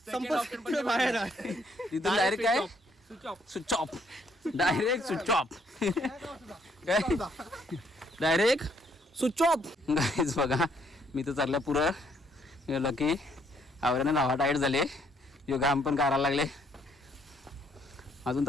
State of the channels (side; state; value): both; normal; correlation 0.68